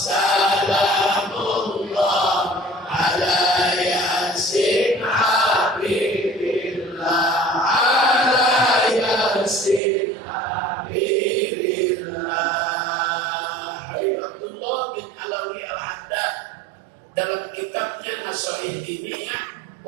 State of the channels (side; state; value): left; drops out; at 9.8 s